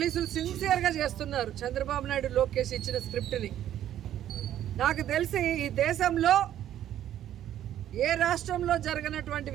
సిన్సియర్గా చేస్తున్నారు. చంద్రబాబు నాయుడు, లోకేష్ ఇచ్చిన స్క్రిప్ట్ని నాకు తెలిసి ఈ దేశంలో ఏ రాష్ట్రంలో జరగనటువంటి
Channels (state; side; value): quieter; left; 11.5 dB